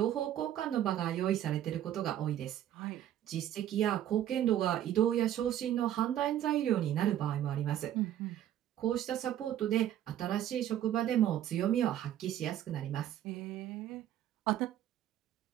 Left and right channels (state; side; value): quieter; left; 11.5 dB